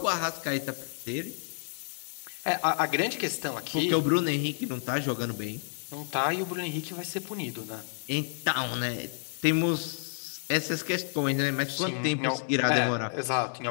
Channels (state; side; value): silent; right; digital silence